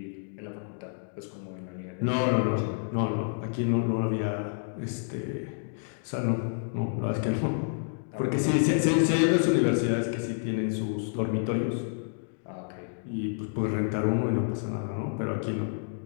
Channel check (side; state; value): right; silent; digital silence